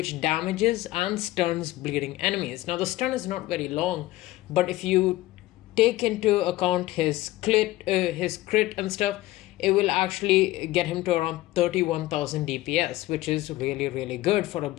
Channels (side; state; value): right; quieter; 17.1 dB